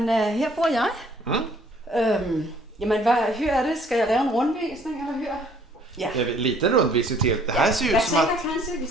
her bor jeg. Jamen, hur är det? Ska jag lave en rundvisning, eller hur? Ja. det är lite rundvisning till. Det här ser ut Jag som att... tänker kanske, vi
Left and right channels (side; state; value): both; normal; correlation 0.59